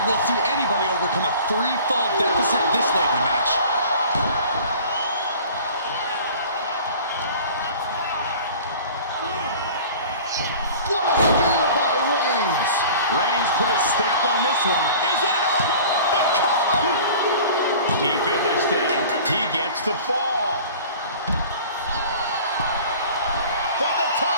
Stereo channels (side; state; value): both; inverted; correlation -0.44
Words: we'll see anybody overcome a 3-fall deficit this late in the match. What a spear by Reigns. Reigns put his stamp on this one. Is it enough? The cover! Deep in this thing, he gets the fall. From the